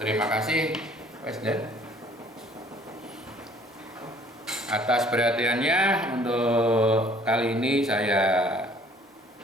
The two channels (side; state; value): both; normal; correlation 0.57